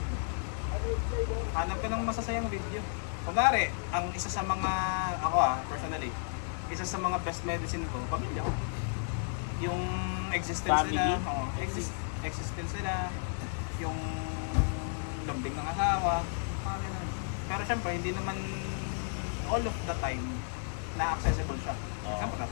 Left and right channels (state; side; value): silent; right; 56 dB below the other